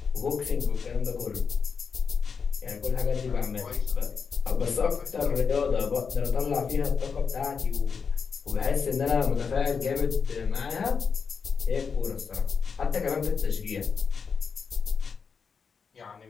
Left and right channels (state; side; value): quieter; right; 5.8 dB